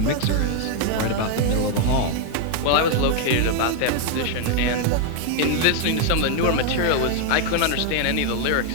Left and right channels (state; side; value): different; both; correlation 0.00